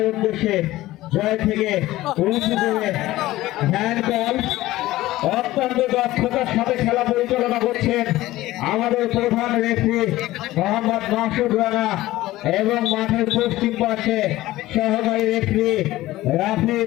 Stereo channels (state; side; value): quieter; right; 16.7 dB